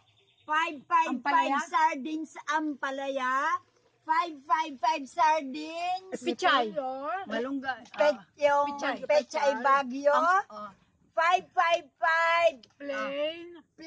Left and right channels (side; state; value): both; identical; correlation 1.00